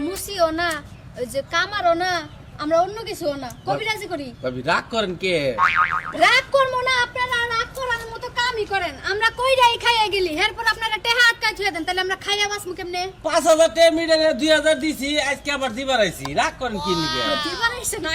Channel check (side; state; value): both; identical; correlation 1.00